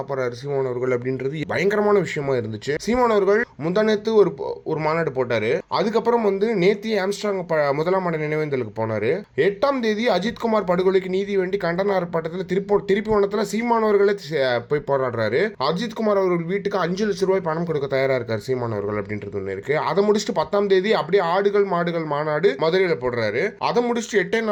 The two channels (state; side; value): identical; both; correlation 1.00